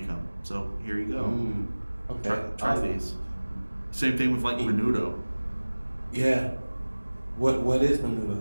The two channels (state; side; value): inverted; both; correlation -1.00